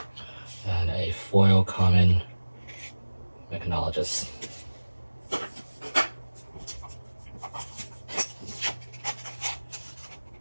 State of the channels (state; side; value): inverted; both; correlation -1.00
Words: and a foil common Mechanologist.